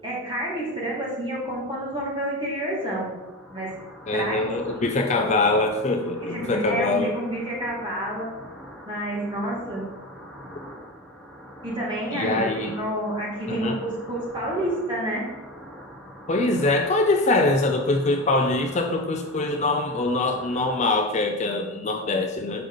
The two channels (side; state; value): both; normal; correlation 0.23